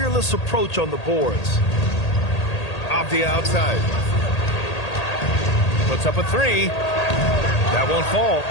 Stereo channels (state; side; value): late; right; 1.8 ms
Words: approach on the boards. Avdia outside. Puts up a 3. That won't fall.